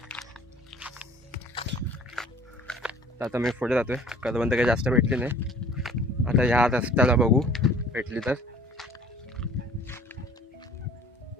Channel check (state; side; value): normal; both; correlation 0.50